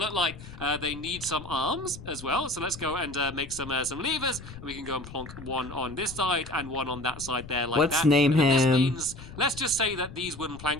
like. They need some arms as well. So let's go and make some levers. We can go and plonk one on this side and one on that side there like let's that. Name him. This means, let's just say that these wooden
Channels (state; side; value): noise; left; rumble, 14 dB below the sound